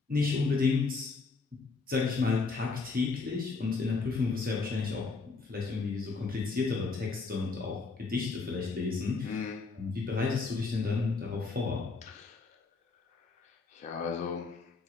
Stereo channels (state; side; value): quieter; right; 4.2 dB